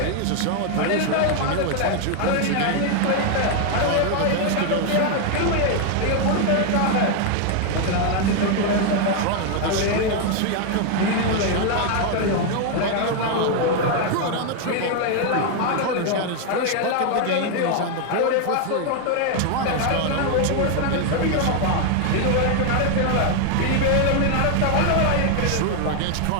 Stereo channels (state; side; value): different; both; correlation 0.01